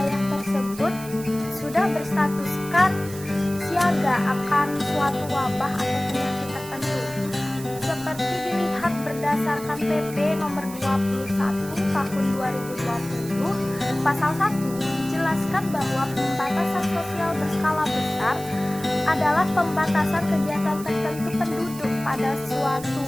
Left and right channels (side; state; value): right; noise; hiss, 15 dB below the sound